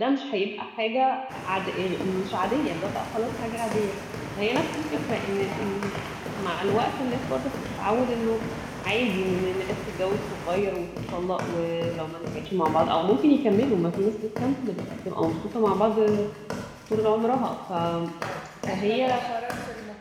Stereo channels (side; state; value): both; identical; correlation 1.00